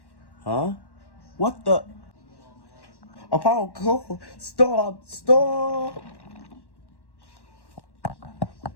Huh? What the? Apollo, go! Stop! Stop!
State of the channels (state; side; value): late; right; 1.1 ms